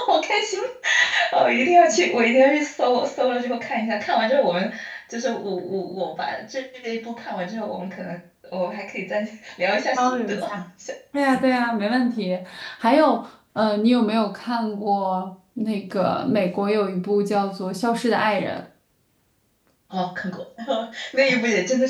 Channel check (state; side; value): identical; both; correlation 1.00